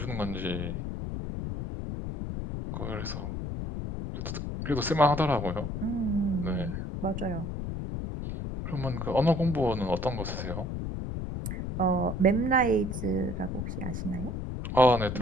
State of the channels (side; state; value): left; noise; rumble, 4 dB below the sound